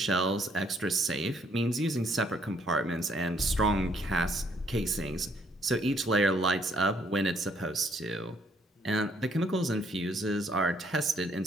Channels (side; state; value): both; normal; correlation 0.67